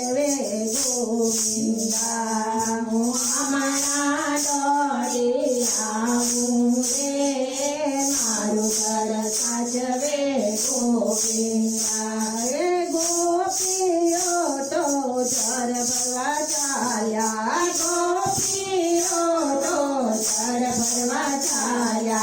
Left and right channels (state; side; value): identical; both; correlation 1.00